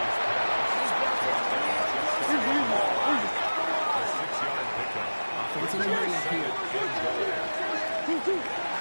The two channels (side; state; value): both; inverted; correlation -1.00